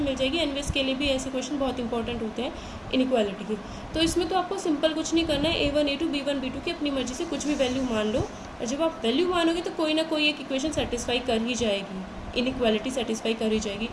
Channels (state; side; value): identical; both; correlation 1.00